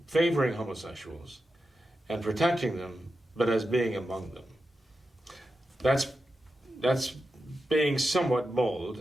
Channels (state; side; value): normal; both; correlation 0.90